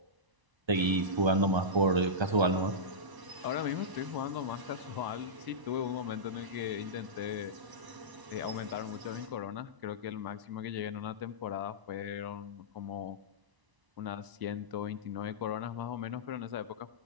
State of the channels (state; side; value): late; left; 1.0 ms